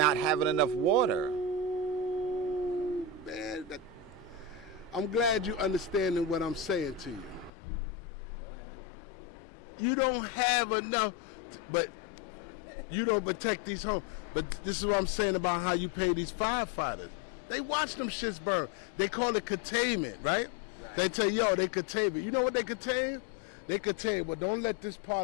having enough water. Man, I'm glad you're understanding what I'm saying to you. Go ahead. You don't have enough, but you don't protect these homes. But this is what I'm saying about how you pay these firefighters. They watch them shits burn. They call it containment, right? Right. They tell you, they contain it. You know what they contain? They contain, well, don't let this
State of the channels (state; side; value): drops out; right; at 7.5 s